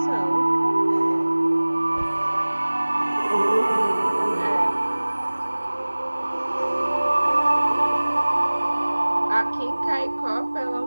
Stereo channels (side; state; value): both; inverted; correlation -1.00